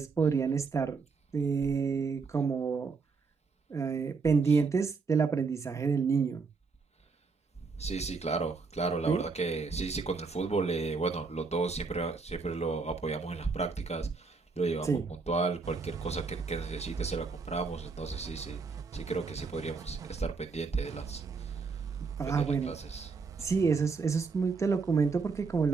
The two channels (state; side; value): quieter; left; 4.6 dB